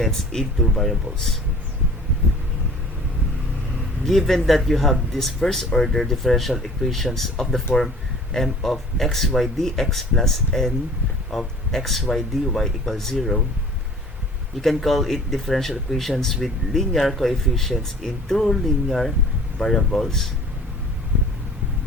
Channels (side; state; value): both; normal; correlation 0.48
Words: in two variables. Given that you have this first order differential equations of the form m of xy dx plus n of xy dy equals 0, you can call it differential equations with linear coefficients in two linear variables